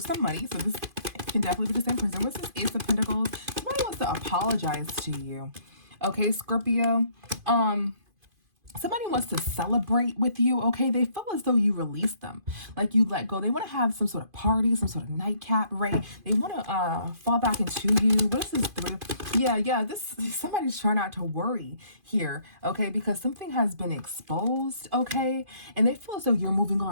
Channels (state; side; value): late; left; 2.5 ms